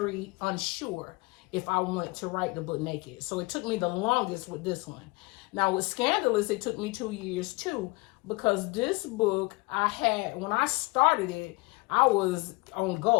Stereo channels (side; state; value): right; quieter; 25.1 dB